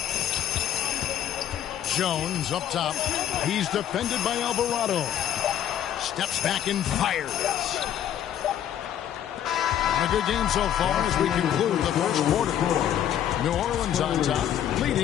Jones up top. He's defended by Alvarado. Steps back and fires. A good game so far as we conclude the first quarter. New Orleans on top,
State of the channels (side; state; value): right; quieter; 10.5 dB